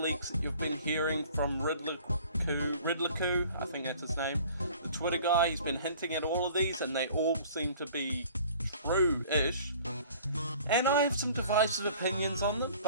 that you've been hearing from Ridley-Coo, I think that's his name, the Twitter guy. He's been hinting at all of these and they all seem to be true-ish. And I have some divisive opinions on them,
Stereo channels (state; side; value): inverted; both; correlation -0.49